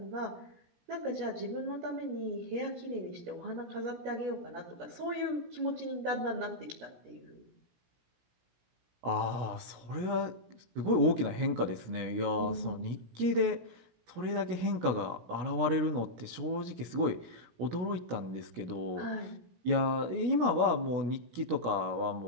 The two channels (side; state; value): left; late; 16 ms